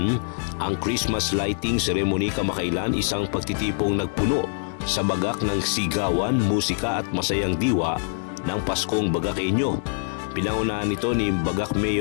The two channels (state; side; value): silent; right; digital silence